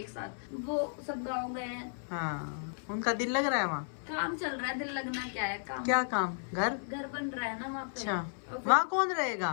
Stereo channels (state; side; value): silent; right; 55 dB below the other